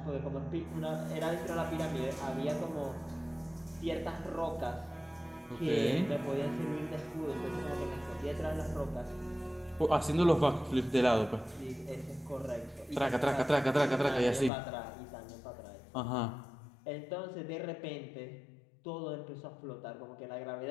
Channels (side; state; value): right; drops out; at 14.5 s